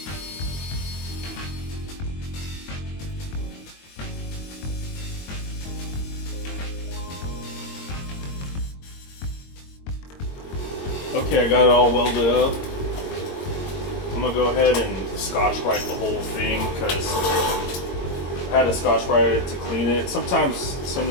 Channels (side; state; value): right; late; 22 ms